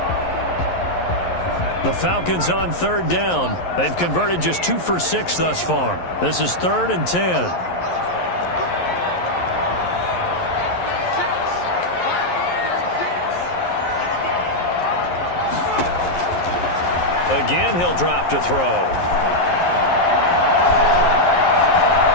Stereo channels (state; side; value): late; right; 11 ms